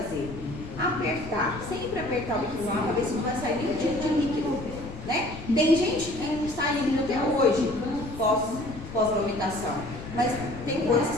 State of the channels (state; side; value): noise; left; rumble, 12 dB below the sound